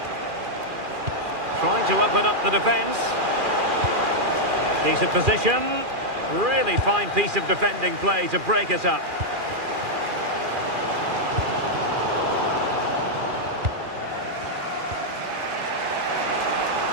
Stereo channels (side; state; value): left; late; 2.4 ms